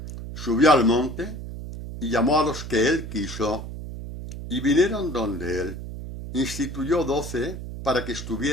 Subió al monte y llamó a los que él quiso y vinieron donde él. Instituyó 12 para que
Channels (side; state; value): right; noise; hum, 9 dB below the sound